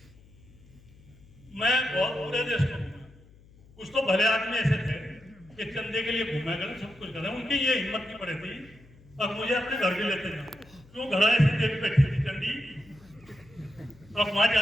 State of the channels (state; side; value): noise; left; hum, 25 dB below the sound